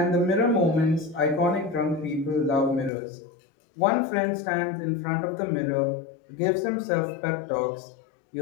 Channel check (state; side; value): drops out; right; at 2.9 s